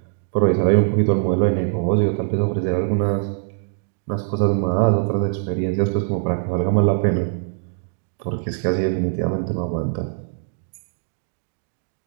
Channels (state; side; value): silent; left; 64 dB below the other